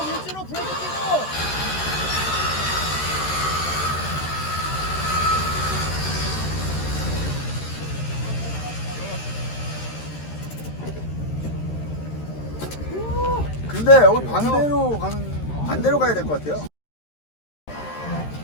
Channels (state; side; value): late; right; 13 ms